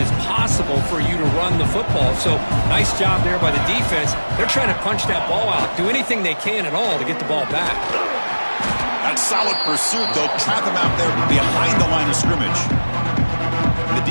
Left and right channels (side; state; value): both; inverted; correlation -1.00